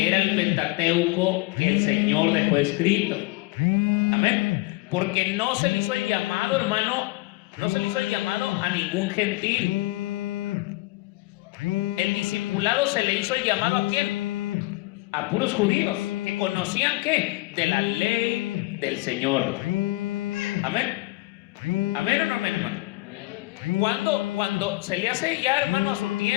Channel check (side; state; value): right; quieter; 21.7 dB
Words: era el Pentateuco que el Señor dejó escrito. Amén. Porque no se le hizo el llamado, hermano, no se le hizo el llamado a ningún gentil. El discipulado se le hizo el llamado ¿a quién? A puros judíos, que conocían ¿qué? De la ley del Señor. Amén. Amén o no amén, hermano. Cuando se le hace ya, hermano, a su